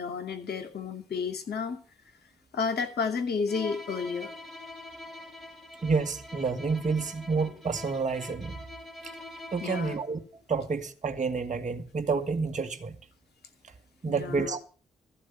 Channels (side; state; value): both; normal; correlation 0.58